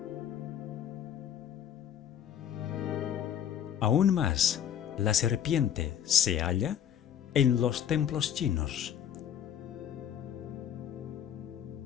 Aún más, la serpiente se halla en los templos chinos,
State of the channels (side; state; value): right; quieter; 9.6 dB